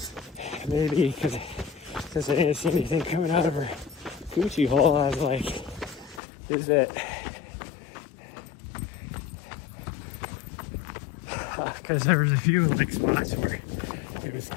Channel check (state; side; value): drops out; right; at 6.2 s